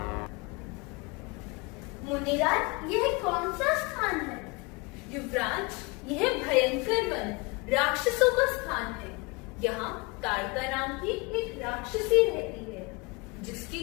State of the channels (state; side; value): quieter; right; 27.2 dB